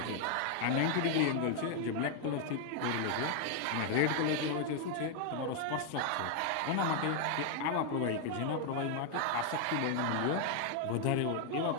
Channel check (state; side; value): different; both; correlation 0.00